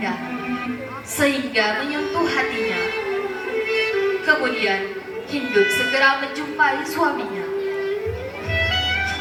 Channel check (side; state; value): both; identical; correlation 1.00